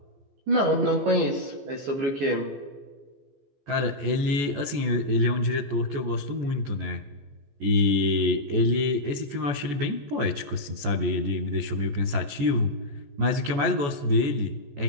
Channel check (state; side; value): late; left; 14 ms